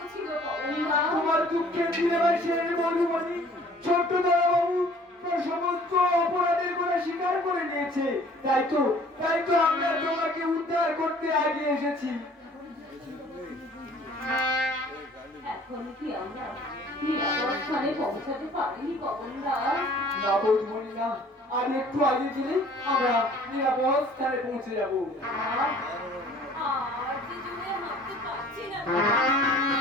ছিল পবনদা। তোমার দুঃখের দিনে বলবনি ছোট্ট দাদাবাবু সমস্ত অপরাধের কথা স্বীকার করে নিয়েছে। তাই তো আমরা তোমাকে উদ্ধার করতে আগে এসেছি। এখন কি আমরা নিরাপদ স্থানে পৌঁছাতে পারিনি পবনদা? না বলবনি না, আর একটু আগে গেলে আমরা নিরাপদ স্থানে পৌঁছে যাবো। আর যে জোরে হাঁটতে পারছি না।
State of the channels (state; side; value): normal; both; correlation 0.53